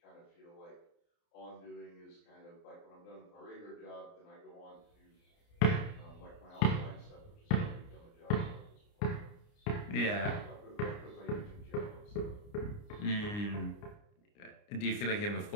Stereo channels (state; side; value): late; right; 29 ms